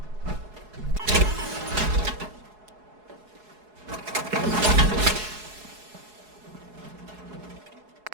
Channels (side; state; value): left; late; 4.7 ms